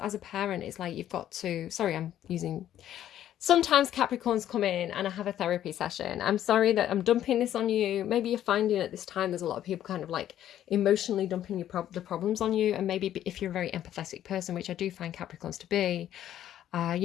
a parent, it's like you've got to, sorry, I'm using, sometimes Capricorns come in and I have a therapy session. I'm sorry that I'm dumping this on you. Maybe you're finding at this time there's a lot of people kind of like emotionally dumping the problems on you. And maybe if you're a very empathetic person, which I do find Capricorns to be,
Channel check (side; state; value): right; quieter; 11.5 dB